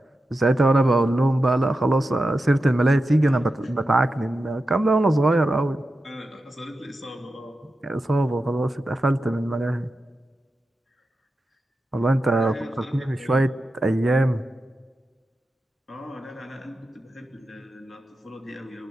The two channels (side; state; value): both; normal; correlation 0.91